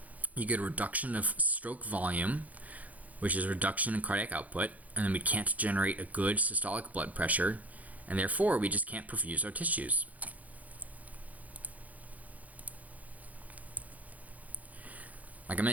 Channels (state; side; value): late; left; 0.076 ms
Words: you get a reduction of stroke volume, which is a reduction in cardiac output, and then we can't generate a good systolic blood pressure, and therefore we just can't perfuse our tissues. Like I